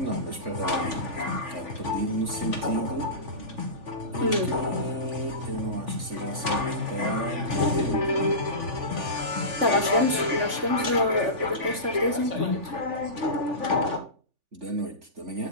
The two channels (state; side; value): late; left; 3.5 ms